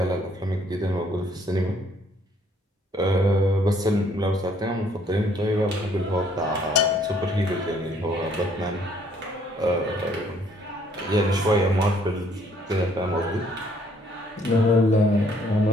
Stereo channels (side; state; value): both; normal; correlation 0.64